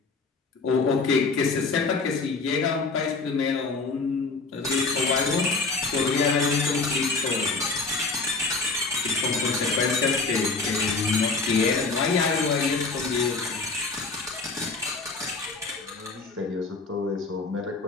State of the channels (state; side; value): quieter; right; 4.0 dB